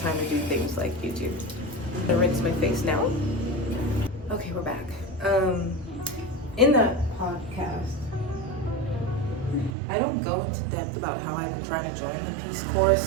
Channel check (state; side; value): drops out; left; at 9.8 s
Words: to do things like YouTube. I'm gonna rinse my face now. Okay, we're back. In that podcast, I don't go into depth about how I've been trying to join the Peace Corps